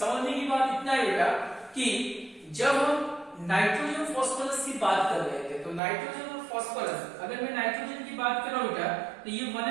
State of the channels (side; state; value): left; drops out; at 5.8 s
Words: की बात इतना है बेटा कि जब हम नाइट्रोजन फॉस्फोरस की बात कर रहे थे, तो नाइट्रोजन और फॉस्फोरस, अगर मैं नाइट्रोजन की बात कर रहा हूं बेटा तो ये